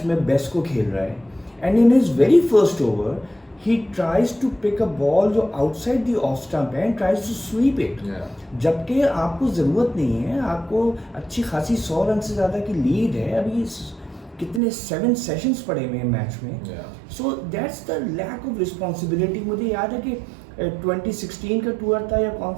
में बेस्ट को खेल रहा है and in his very first over he tries to pick a ball जो outside the off stump है and tries to sweep it. जबकि आपको ज़रूरत नहीं है, आपको अच्छी खासी 100 रन से ज़्यादा की लीड है. अभी कितने 7 सेशंस पड़े हुए हैं मैच में. So that's the lack of responsibility. मुझे याद है कि 2016 का टूर था या कौन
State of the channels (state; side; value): drops out; left; at 14.6 s